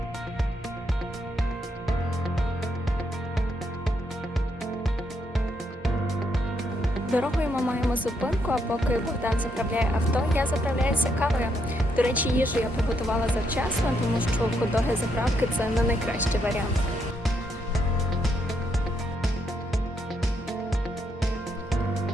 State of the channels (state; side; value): normal; both; correlation 0.76